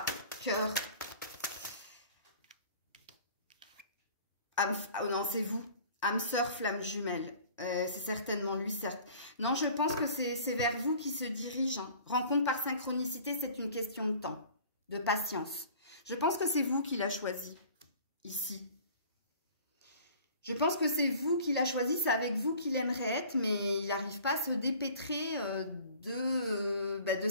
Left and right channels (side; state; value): both; inverted; correlation -0.48